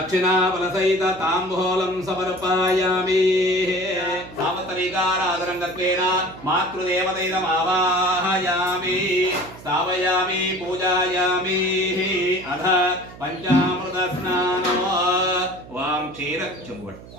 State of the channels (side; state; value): right; noise; hum, 18 dB below the sound